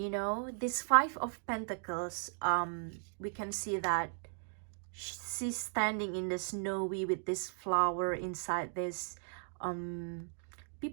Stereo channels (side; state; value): left; silent; digital silence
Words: know, this 5 of Pentacles, we can see that she's standing in the snowy with this flower inside this.